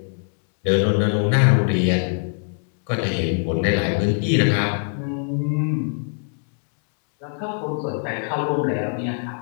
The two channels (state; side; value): silent; right; digital silence